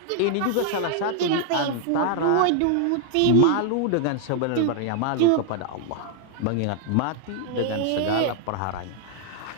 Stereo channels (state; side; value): different; both; correlation 0.00